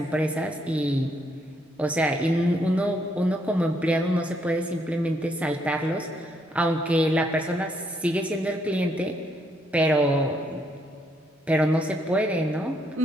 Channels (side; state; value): both; normal; correlation 0.73